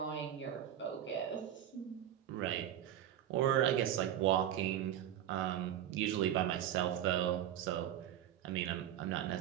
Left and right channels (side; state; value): left; quieter; 11.0 dB